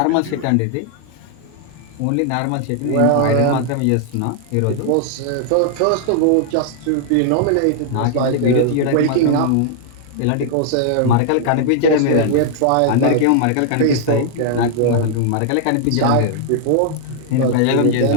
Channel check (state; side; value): different; both; correlation 0.00